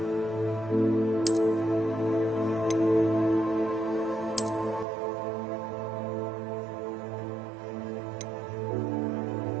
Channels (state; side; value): drops out; left; at 4.9 s